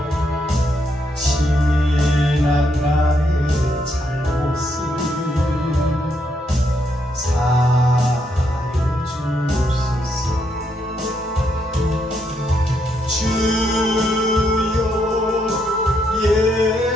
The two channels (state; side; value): normal; both; correlation 0.77